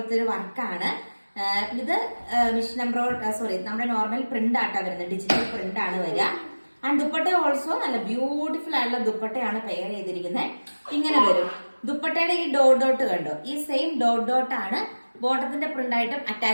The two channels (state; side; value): inverted; both; correlation -1.00